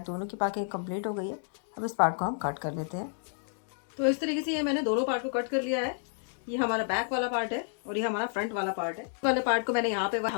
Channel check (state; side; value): silent; right; digital silence